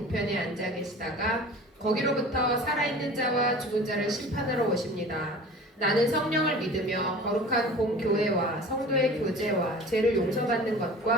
앉아 계시다가 거기로부터 살아있는 자와 죽은 자를 심판하러 오십니다. 나는 성령을 믿으며 거룩한 공교회와 성도의 교제와 죄를 용서받는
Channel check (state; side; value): normal; both; correlation 0.40